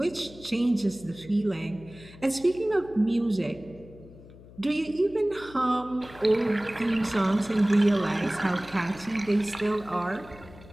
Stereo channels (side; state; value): left; noise; hum, 20 dB below the sound